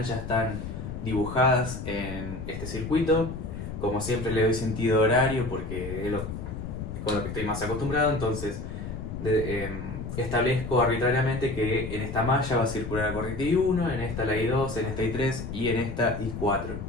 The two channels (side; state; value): left; noise; rumble, 7 dB below the sound